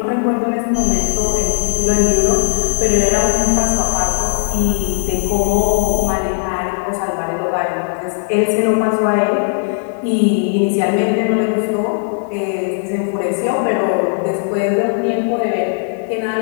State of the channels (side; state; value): right; silent; 64 dB below the other